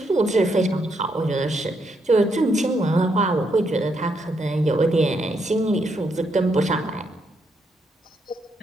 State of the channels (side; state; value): both; normal; correlation 0.77